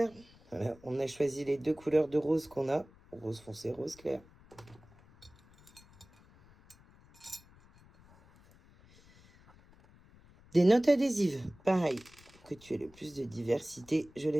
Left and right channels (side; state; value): left; noise; rumble, 26 dB below the sound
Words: Voilà, on a choisi les 2 couleurs de rose qu'on a. Rose foncé, rose clair. Des notes adhésives. Pareil, que tu aies le plus de diversité. Je